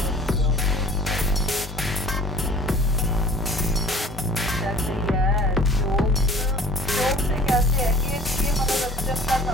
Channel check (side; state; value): both; normal; correlation 0.48